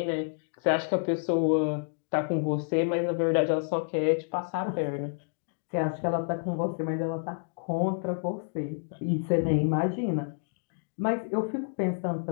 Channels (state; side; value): silent; right; digital silence